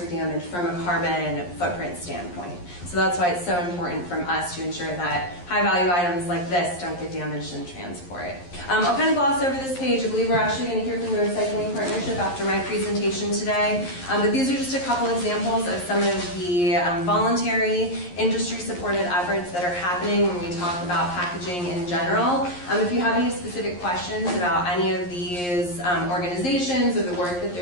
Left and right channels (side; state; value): right; late; 11 ms